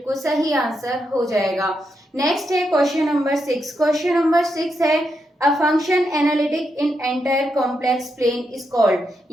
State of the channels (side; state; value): both; normal; correlation 0.83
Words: सही आंसर हो जाएगा। नेक्स्ट है क्वेश्चन नंबर 6। क्वेश्चन नंबर 6 है a function analytic in entire complex plane is called,